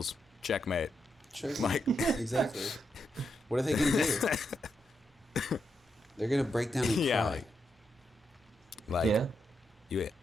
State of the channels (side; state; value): both; normal; correlation 0.83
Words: checkmate. Like, exactly. What are they gonna do? They're gonna break down and cry.